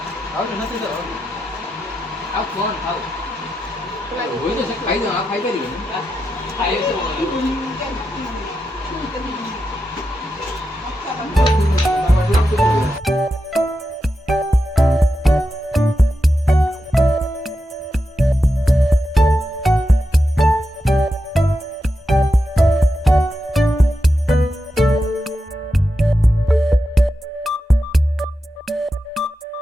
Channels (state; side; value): normal; both; correlation 0.88